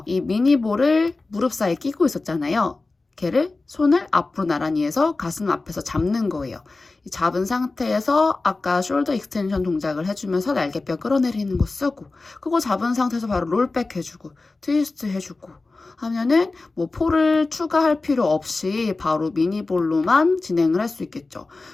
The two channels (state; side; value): quieter; right; 3.5 dB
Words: 이 미니볼을 무릎 사이에 끼고 있었잖아요. 걔를 손을 앞으로 나란히 해서 가슴 앞에서 잡는 거예요. 잡은 상태에서 아까 숄더 익스텐션 동작을 해주면서 날개뼈 끌어내리는 거 쓰고, 그거 잡은 상태에서 바로 롤백 해주고 트위스트 해주고 하면은 폴을 추가할 필요 없이 바로 미니볼로만 진행을 할 수 있겠죠.